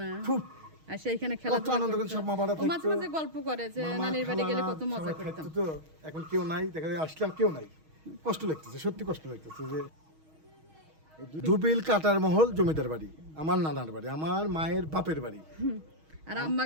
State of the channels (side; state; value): left; late; 6.3 ms